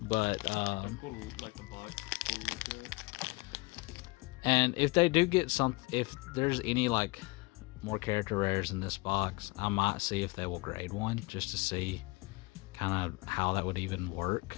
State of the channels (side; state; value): right; quieter; 25.6 dB